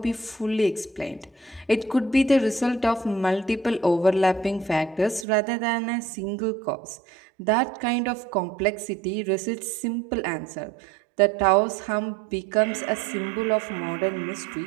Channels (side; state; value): left; drops out; at 5.2 s